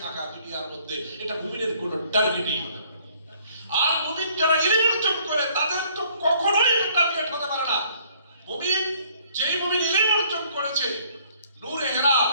থাকা দুনিয়ার মধ্যে, এটা মুমিনের কোনো টার্গেটই হতে পারে না। আর মুমিন যারা ইলম অর্জন করে তাদের তো কখনোই টার্গেট হতে পারে না। মুমিন, যেই মুমিন ইলম অর্জন করেছে, নূরে হেরা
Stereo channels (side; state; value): both; inverted; correlation -0.61